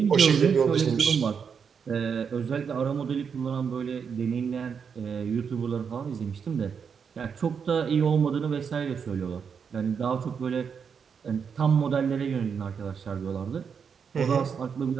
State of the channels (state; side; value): quieter; left; 6.6 dB